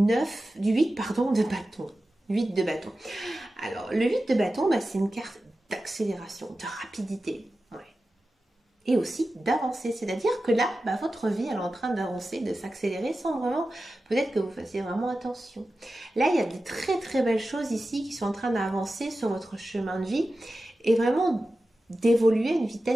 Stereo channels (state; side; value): normal; both; correlation 0.94